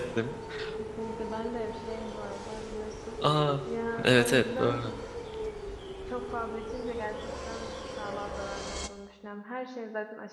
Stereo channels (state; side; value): identical; both; correlation 1.00